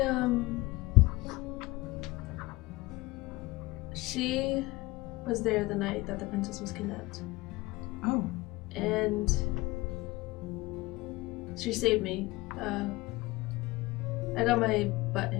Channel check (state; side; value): quieter; right; 20.9 dB